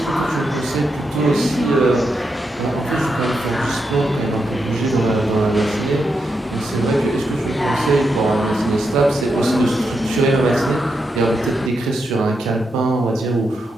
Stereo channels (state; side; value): normal; both; correlation 0.84